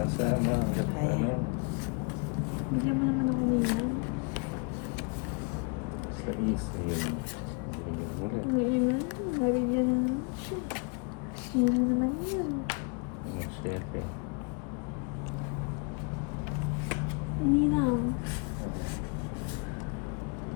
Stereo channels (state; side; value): quieter; right; 35.5 dB